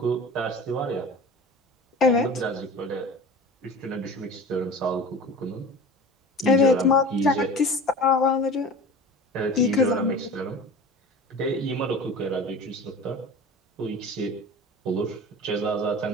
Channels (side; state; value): both; normal; correlation 0.36